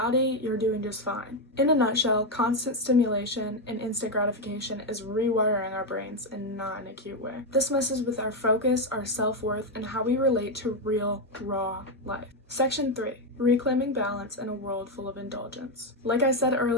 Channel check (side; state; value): both; normal; correlation 0.06